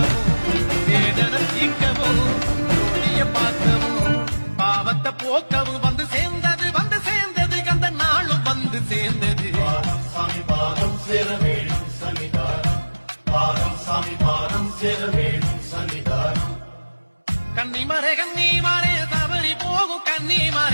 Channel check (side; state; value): both; inverted; correlation -1.00